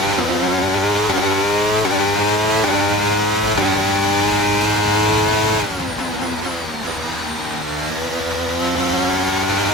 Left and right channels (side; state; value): both; normal; correlation 0.42